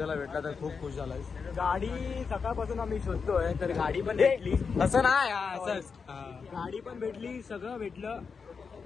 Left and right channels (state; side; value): quieter; right; 5.5 dB